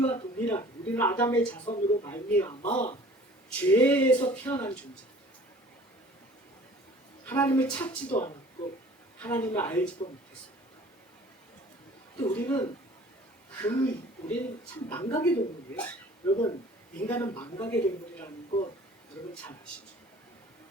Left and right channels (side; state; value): both; normal; correlation 0.48